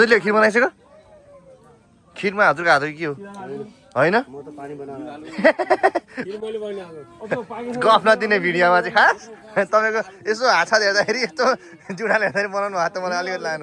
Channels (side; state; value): both; identical; correlation 1.00